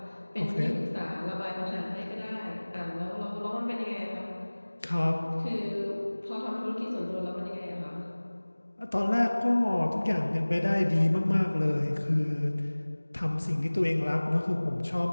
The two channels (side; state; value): both; inverted; correlation -1.00